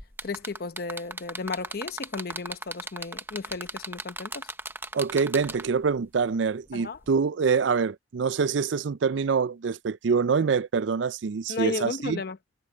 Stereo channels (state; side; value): quieter; left; 4.1 dB